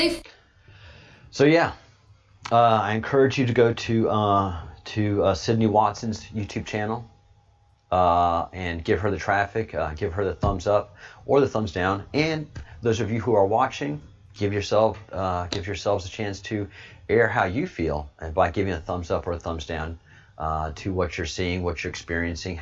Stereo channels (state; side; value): identical; both; correlation 1.00